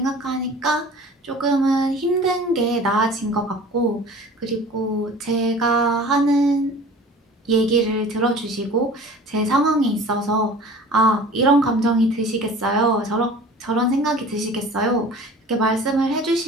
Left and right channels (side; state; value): both; normal; correlation 0.43